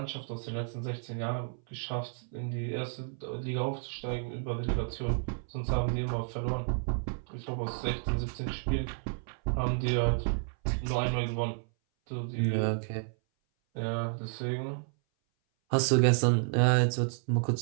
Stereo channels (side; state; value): left; silent; 57 dB below the other